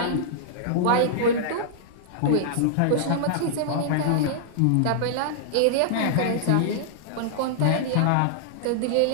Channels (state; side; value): different; both; correlation -0.01